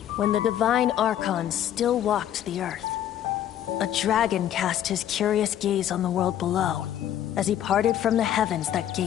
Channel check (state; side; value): quieter; right; 11.0 dB